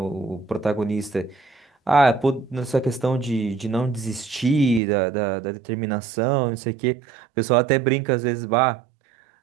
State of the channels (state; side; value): drops out; left; at 4.8 s